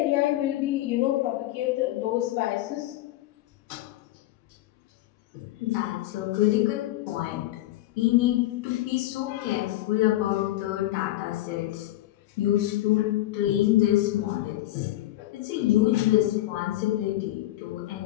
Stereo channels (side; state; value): right; quieter; 15.6 dB